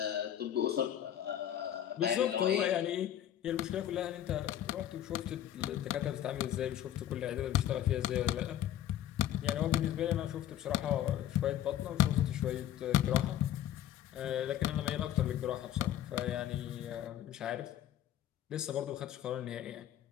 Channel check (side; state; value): right; quieter; 11.3 dB